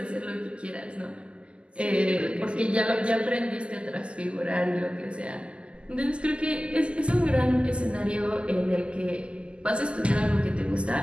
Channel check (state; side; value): late; left; 0.053 ms